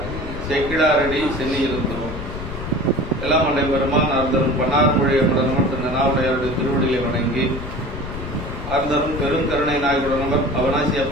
செக்கிடாரடி சென்னி இருந்தோம். எல்லாம் அண்டை பெருமான் அர்த்தரும் பன்னார் மொழியை திரு நனாவுடையாருடைய திருவடியை வணங்கி அர்த்தரும் பெருங்கருணை நாயகுடனவர் அவனாசி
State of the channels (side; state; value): left; noise; rumble, 8 dB below the sound